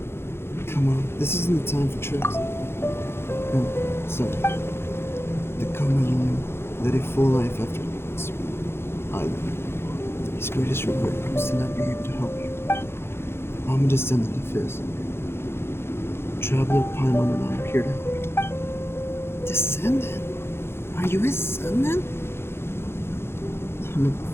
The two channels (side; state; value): right; late; 0.12 ms